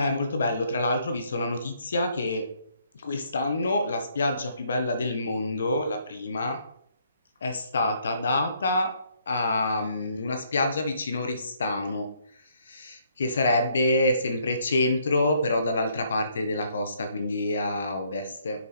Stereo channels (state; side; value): inverted; both; correlation -0.69